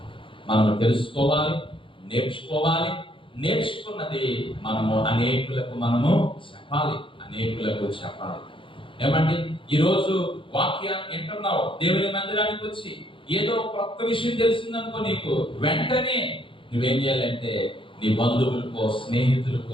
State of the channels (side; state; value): right; late; 0.25 ms